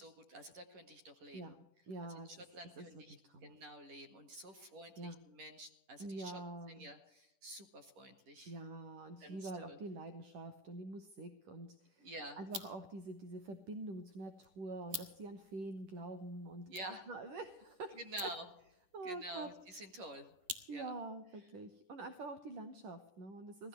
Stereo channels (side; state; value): left; late; 10 ms